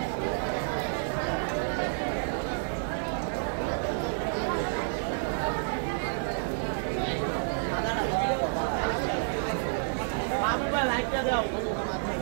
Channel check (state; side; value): silent; left; digital silence